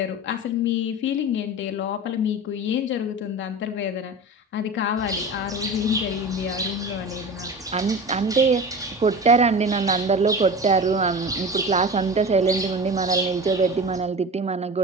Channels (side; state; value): both; normal; correlation 0.32